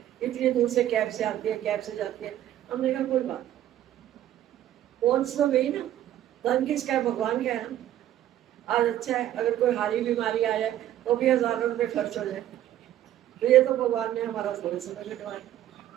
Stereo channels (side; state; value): left; quieter; 12.3 dB